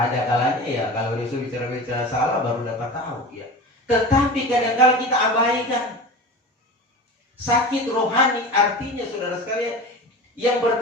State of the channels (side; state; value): both; normal; correlation 0.32